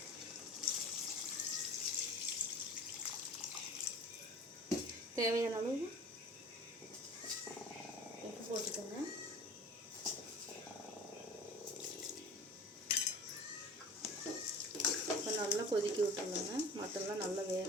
தேவையான அளவு உப்பு போட்டுக்கோங்க. இப்போ நல்லா கொதிக்க விட்டுருங்க. மட்டன்லாம் நல்லா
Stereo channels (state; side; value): normal; both; correlation 0.41